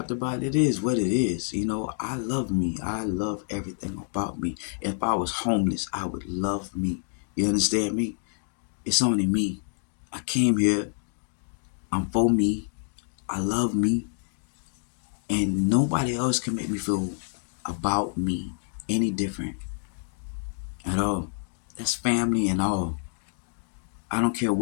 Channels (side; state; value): right; silent; digital silence